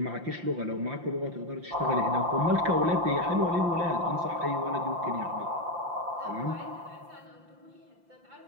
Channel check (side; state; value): left; late; 5.8 ms